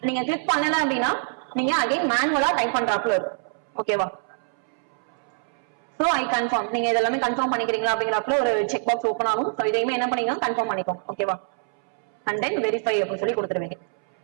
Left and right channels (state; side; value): silent; left; 62 dB below the other